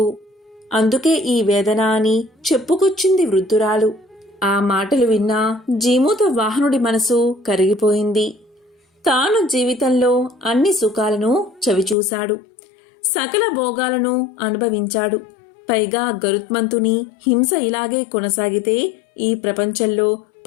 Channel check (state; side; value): drops out; right; at 12.0 s